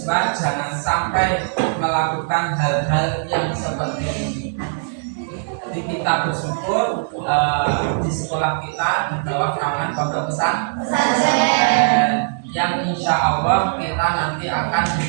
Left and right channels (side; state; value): left; silent; digital silence